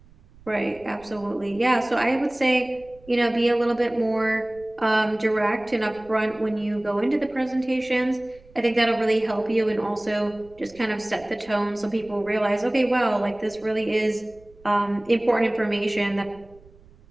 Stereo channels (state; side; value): noise; right; rumble, 26 dB below the sound